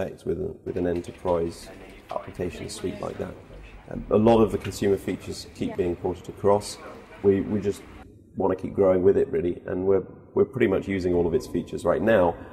with an enterprise application suite like that. A lot of the consumer features keep being ported across. We just want to keep growing with it, really, and we're pretty much using all of its features right now.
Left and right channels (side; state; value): both; identical; correlation 1.00